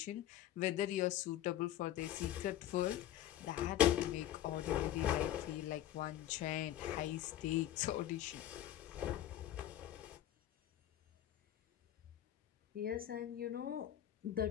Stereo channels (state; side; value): quieter; right; 12.3 dB